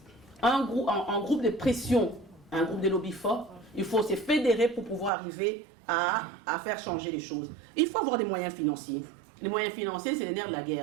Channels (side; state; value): left; drops out; at 5.1 s